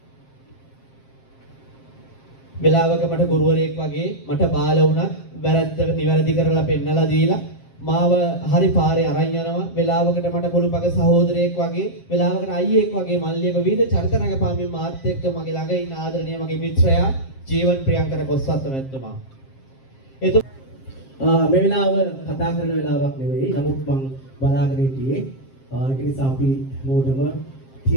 වෙලාවක මට ගුරුවරයෙක් වගේ මට බාල වුණා. වැරද්ද නිවැරදි කරලා පෙන්නලා දීලා මාව හරි පාරේ අරන් යනවා. වෙලාවකට මට පොළුපග සහෝදරයෙක් වගේ, වෙලාවකට අයියෙක් වගේ මල්ලියක විවිධ චරිත රඟපාමින් මාත් එක්ක මගේ ළඟ ඉන්න ආදරණීය මගේ මිත්‍රයා ජීවන් ප්‍රියංකර කොස්වත්ත මැතිතුමා. මේ වෙලාව කතා කරන වෙලාවක් නෙවෙයි. නමුත් මම බලාගෙන හිටියේ ඒක නිසා අපි මොඩම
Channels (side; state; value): right; late; 7.5 ms